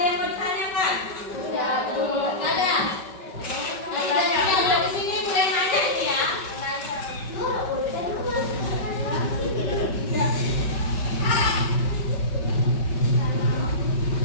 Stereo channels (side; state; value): right; late; 5.3 ms